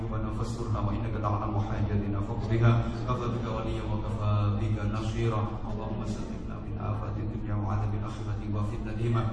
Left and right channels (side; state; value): both; identical; correlation 1.00